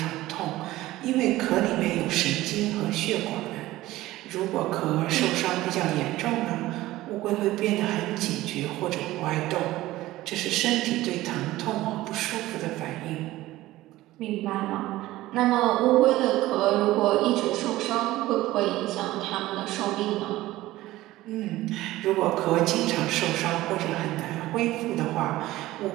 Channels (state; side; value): quieter; left; 16.8 dB